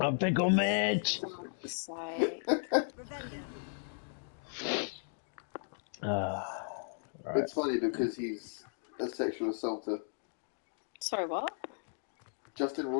pickle, Mitch. Sake. Right. It's funny because he's a sexual assaulter. Sorry, what? Justin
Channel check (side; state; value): right; silent; digital silence